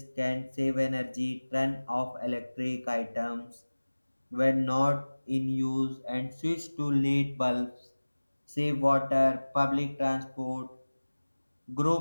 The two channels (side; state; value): both; inverted; correlation -1.00